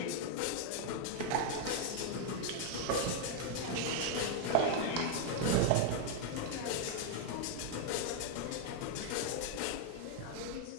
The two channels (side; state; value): both; different; correlation 0.00